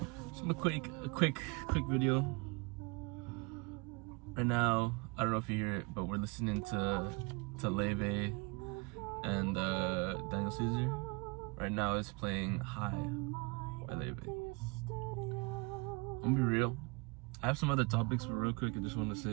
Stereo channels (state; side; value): quieter; left; 29.1 dB